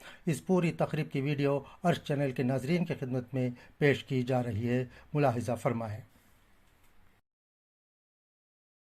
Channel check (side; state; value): both; identical; correlation 1.00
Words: इस पूरी तकरीब की वीडियो अर्श चैनल के नाजरीन की खिदमत में पेश की जा रही है, मुलाहिजा फरमाएं।